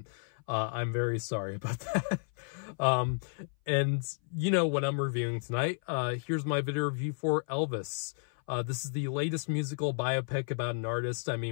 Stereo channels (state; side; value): silent; right; 56 dB below the other